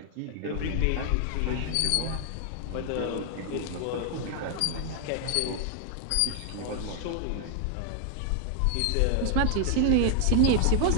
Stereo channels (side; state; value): both; different; correlation 0.00